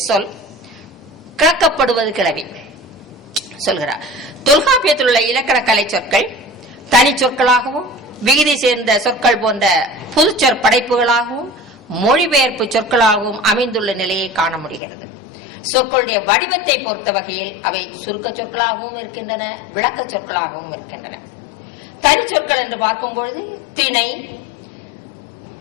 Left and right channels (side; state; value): right; drops out; at 14.8 s